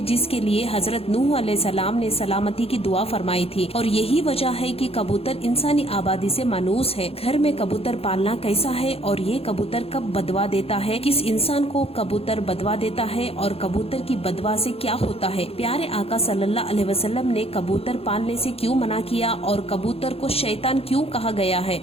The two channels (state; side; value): late; right; 0.28 ms